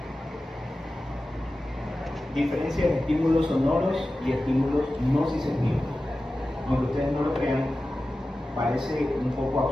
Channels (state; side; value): normal; both; correlation 0.94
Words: Diferencia de estímulos sonoros y estímulos no sensitivos. Aunque ustedes no lo crean, parece un poco